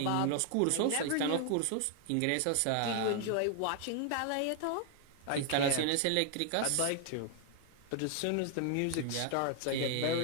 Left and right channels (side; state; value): both; different; correlation 0.00